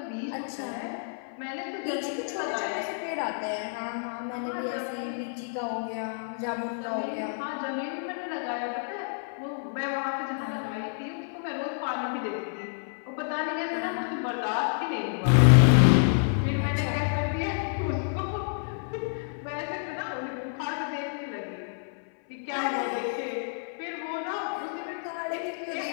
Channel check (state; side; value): silent; right; 56 dB below the other